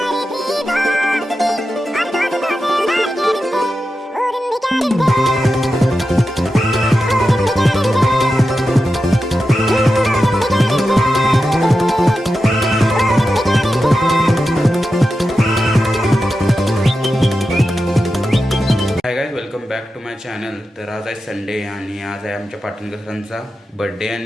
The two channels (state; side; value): normal; both; correlation 0.91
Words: Hi guys, welcome back to my channel. तर आज आहे Sunday आणि आज आहे आमच्या पाटणकर सरांचा बर्थडे